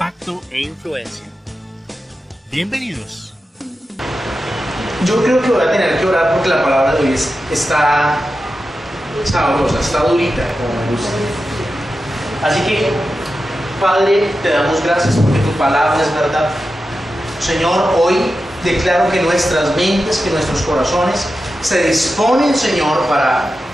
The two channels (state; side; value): normal; both; correlation 0.91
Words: e influencia. Bienvenidos. Yo creo que voy a tener que orar porque la palabra de hoy está sabrosa, está durita, como me gusta. Así que, Padre, te damos gracias porque tu palabra es verdad. Señor, hoy declaro que nuestras mentes, que nuestros corazones se disponen, Señor, para